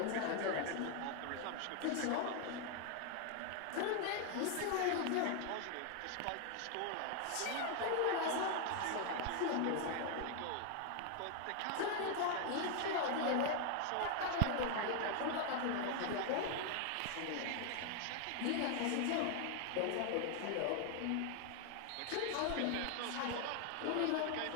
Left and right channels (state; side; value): different; both; correlation 0.00